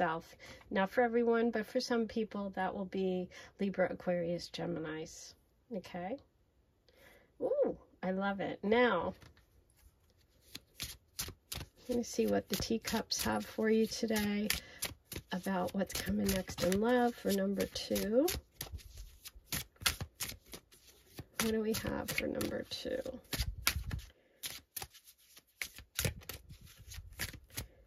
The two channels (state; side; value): identical; both; correlation 1.00